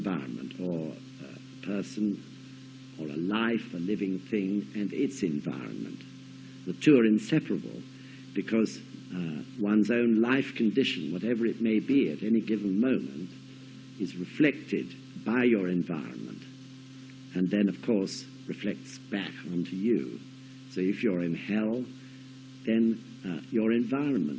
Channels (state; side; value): identical; both; correlation 1.00